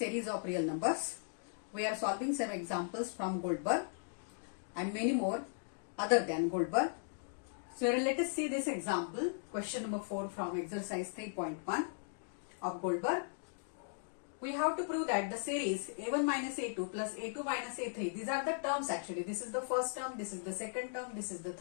of real numbers. We are solving some examples from Goldberg and many more other than Goldberg. So let us see this example, question number 4 from exercise 3.1 of Goldberg. We have to prove that the series a1 minus a2 plus a2 minus a3, these are the terms actually. This is the first term, this is the second term, this is the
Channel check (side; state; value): right; silent; digital silence